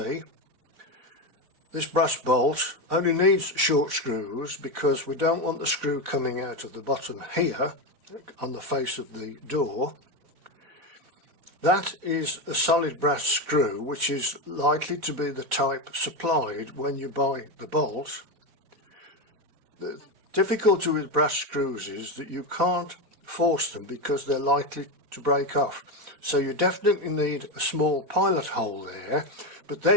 this brass bolt only needs short screws because we don't want the screw coming out of the bottom here on the face of the door. That is a solid brass screw, which is likely to be the type supplied when you buy the bolt. The difficulty with brass screws is that you can't force them because they're likely to break off. So you definitely need a small pilot hole there, but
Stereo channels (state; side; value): late; left; 4.1 ms